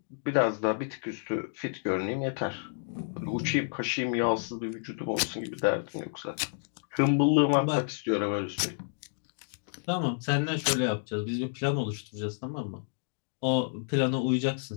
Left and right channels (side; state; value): right; silent; digital silence